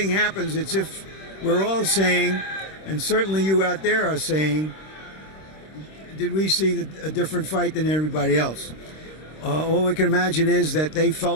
happens, it's if we're all saying, and certainly you out there are saying, did we see a different fight than everybody else? All we can imagine is that they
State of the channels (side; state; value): right; late; 26 ms